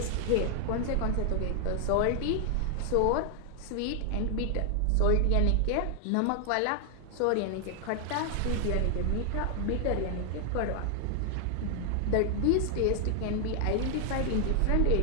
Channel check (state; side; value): different; both; correlation 0.00